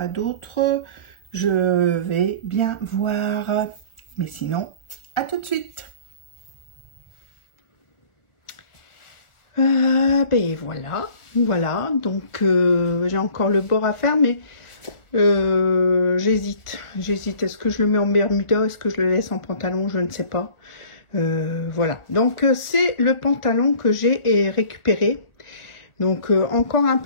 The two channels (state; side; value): late; right; 1.4 ms